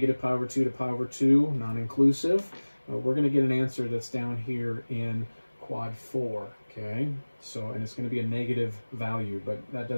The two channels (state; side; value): inverted; both; correlation -1.00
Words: over 2 to pi over 2, non-inclusive, we're going to get an answer that's down here in quad 4. Okay, so, and it's going to be a negative value, but that